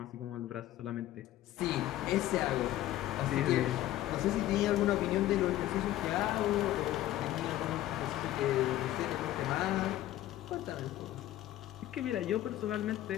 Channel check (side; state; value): right; quieter; 14.2 dB